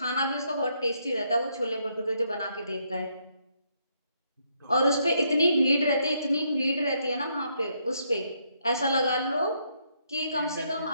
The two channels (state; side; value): inverted; both; correlation -0.74